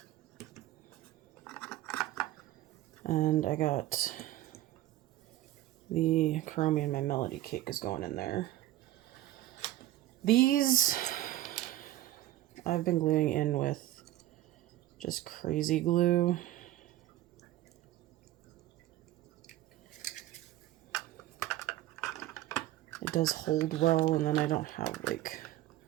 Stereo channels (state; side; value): quieter; left; 14.9 dB